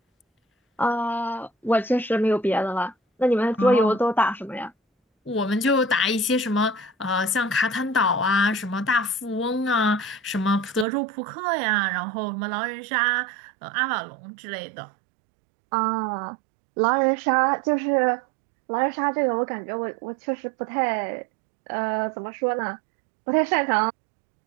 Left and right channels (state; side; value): drops out; left; at 10.9 s